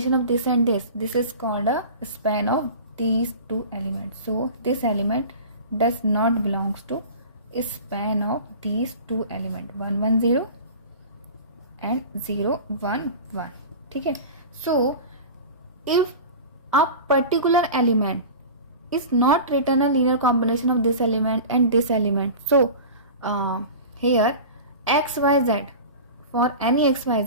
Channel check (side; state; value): both; inverted; correlation -0.35